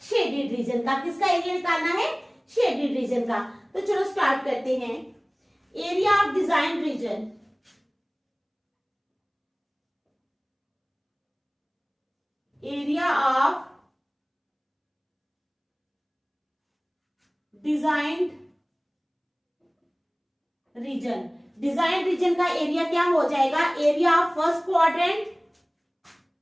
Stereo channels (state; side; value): identical; both; correlation 1.00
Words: शेडेड रीजन का। किसका एरिया निकालना है? शेडेड रीजन का। तो चलो स्टार्ट करते हैं। Area of design region, area of designed region, design region का एरिया क्या हो जाएगा? Area of first quadrant,